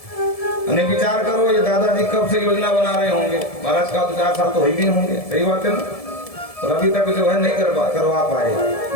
अने विचार करो, ये दादाजी कब से योजना बना रहे होंगे, महाराज का तो 4 साल तो हो ही भी होंगे, सही बात है ना। और अभी तक जो है नहीं करवा पाए,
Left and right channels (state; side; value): late; right; 1.7 ms